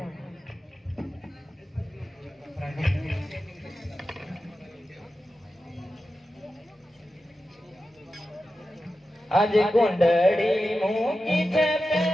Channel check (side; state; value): both; normal; correlation 0.92